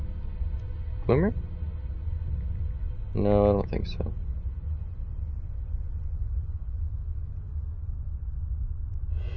Glimmer? No, I don't think so.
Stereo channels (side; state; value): both; identical; correlation 1.00